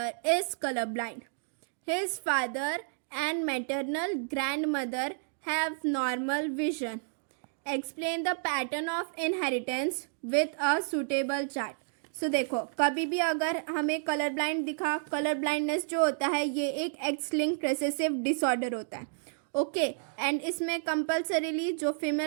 is colorblind. His father and maternal grandmother have normal vision. Explain the pattern of inheritance with a suitable chart. सो देखो कभी भी अगर हमें colour blind दिखा, colour blindness जो होता है ये एक एक्स लिंक्ड रिसेसिव डिसऑर्डर होता है. ओके, एंड इसमें कंपल्सरीली जो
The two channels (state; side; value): silent; left; digital silence